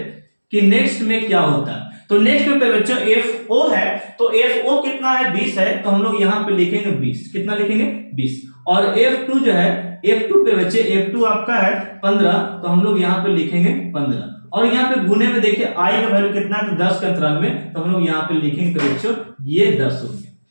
कि नेक्स्ट में क्या होता है। तो नेक्स्ट में बच्चों FO है, तो FO कितना है? 20 है, तो हम लोग यहाँ पे लिखेंगे 20। कितना लिखेंगे? 20। और F2 जो है, F2 पे बच्चे F2 आपका है 15, तो हम लोग यहाँ पे लिखेंगे 15। और यहाँ पे गुने में देखिए I का वैल्यू कितना है? तो 10 के अंतराल में, तो हम लोग यहाँ पे लिखेंगे बच्चों ये 10 हो गया।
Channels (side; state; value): both; inverted; correlation -1.00